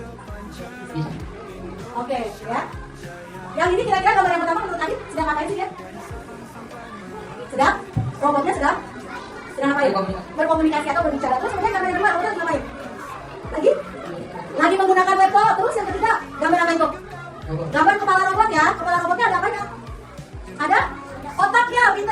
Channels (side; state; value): both; identical; correlation 1.00